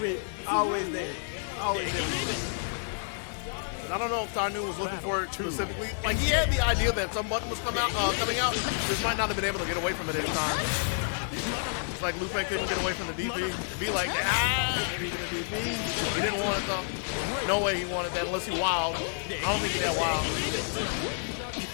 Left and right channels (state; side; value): silent; right; 55 dB below the other